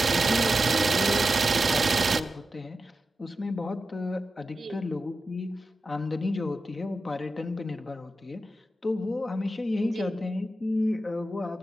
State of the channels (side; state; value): both; normal; correlation 0.91